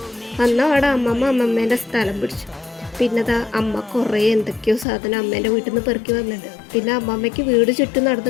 വന്ന അവിടെ അമ്മമ്മേൻ്റെ സ്ഥലം പിടിച്ചു. പിന്നെ അമ്മ കുറേ എന്തൊക്കെയോ സാധനം അമ്മേൻ്റെ വീട്ടിൽ നിന്ന് പെറുക്കി വന്നിട്ടുണ്ട്. പിന്നെ അമ്മമ്മയ്ക്ക് വീട് ചുറ്റും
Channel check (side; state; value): right; drops out; at 4.9 s